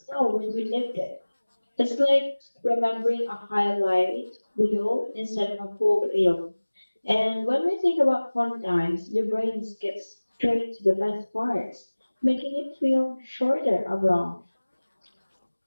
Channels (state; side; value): inverted; both; correlation -1.00